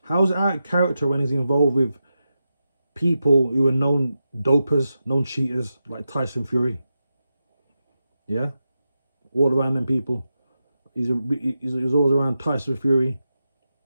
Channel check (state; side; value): inverted; both; correlation -0.89